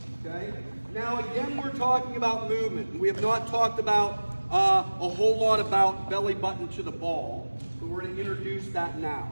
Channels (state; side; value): inverted; both; correlation -1.00